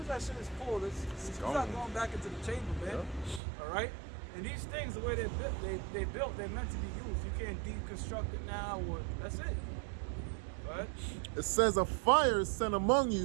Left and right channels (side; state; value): left; drops out; at 3.4 s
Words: that shit is pulled, it's not going back into the chamber, man. Yeah. All right? And these things, the way they're built, they're meant to be used. You can't deconstruct it now, or that's it. Right? It says, a fire is sent among